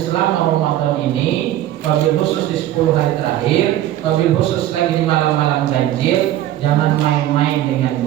selama Ramadan ini, wabil khusus di 10 hari terakhir, wabil khusus lagi di malam-malam ganjil, jangan main-main dengan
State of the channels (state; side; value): quieter; left; 13.1 dB